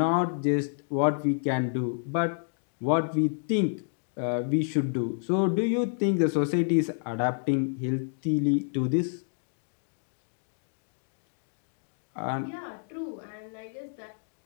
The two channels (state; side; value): silent; right; digital silence